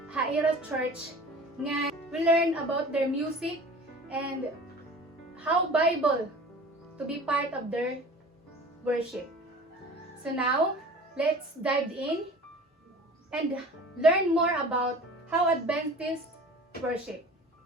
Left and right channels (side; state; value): both; normal; correlation 0.42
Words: haira church, nga we learn about their music and how Bible to be part of their worship. So now, let's dive in and learn more about how Adventists worship.